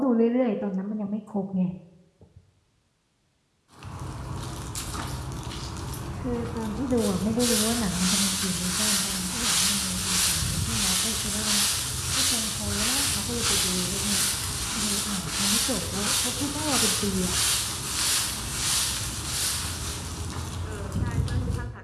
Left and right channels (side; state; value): both; identical; correlation 1.00